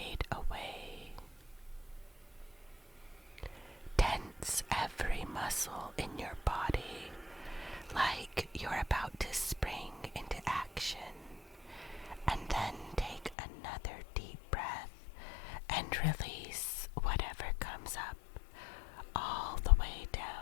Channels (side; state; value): right; drops out; at 13.4 s